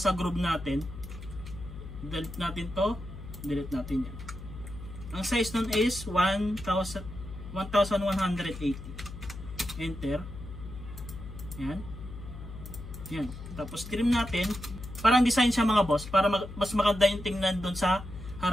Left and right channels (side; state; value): left; noise; hum, 12 dB below the sound